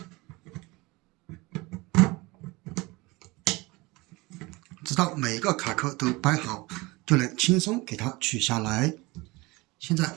直到每一個卡扣都掰好，就能輕鬆給它取下來。現在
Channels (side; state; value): left; quieter; 23.1 dB